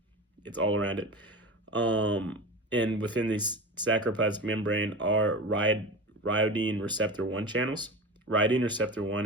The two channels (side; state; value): both; normal; correlation 0.29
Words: it's all around it. And within the sarcoplasmic membrane are rhyodine receptor 1 channels. Rhyodine receptor 1